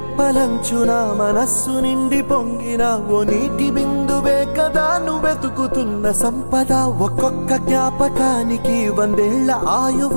మనస్సు నిండి పొంగిన ఓ నీటి బిందువే కదా నువ్వు వెతుకుతున్న సంపద ఒక్కొక్క జ్ఞాపకానికి 100 ఏళ్ల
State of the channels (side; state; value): both; inverted; correlation -1.00